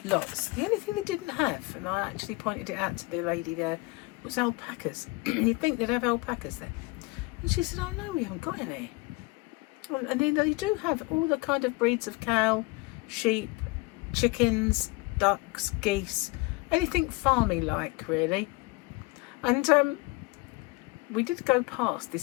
Lots. The only thing they didn't have, and I actually pointed it out to the lady there, was alpacas. You'd think they'd have alpacas there. And she said, oh no, we haven't got any. And then they do have all the kind of breeds of cow, sheep, chickens, ducks, geese, anything farmy like really. And we did go past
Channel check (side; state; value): right; quieter; 24.3 dB